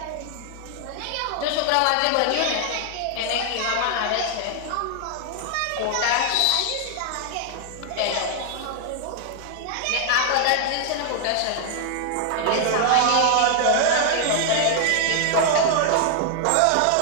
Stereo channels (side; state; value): both; different; correlation 0.00